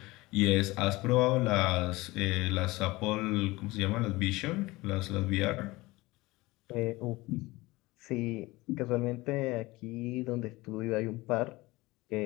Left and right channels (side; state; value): right; quieter; 20.8 dB